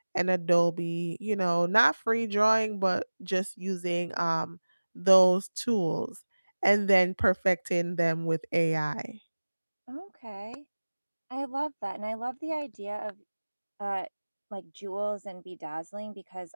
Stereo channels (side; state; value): both; inverted; correlation -1.00